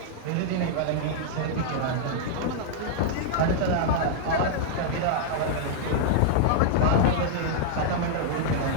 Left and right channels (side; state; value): both; different; correlation -0.01